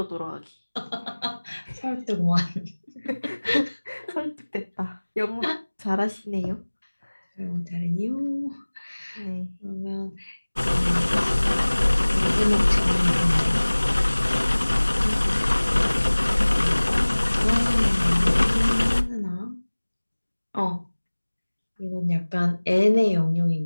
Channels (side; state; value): both; inverted; correlation -1.00